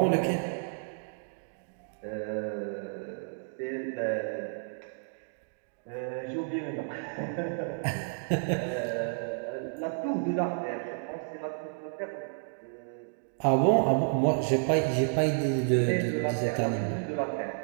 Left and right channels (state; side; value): silent; left; digital silence